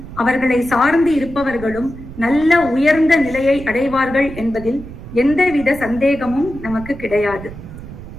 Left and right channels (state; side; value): noise; right; rumble, 13 dB below the sound